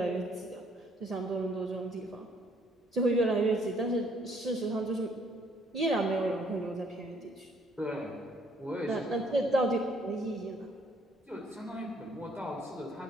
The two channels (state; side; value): normal; both; correlation 0.64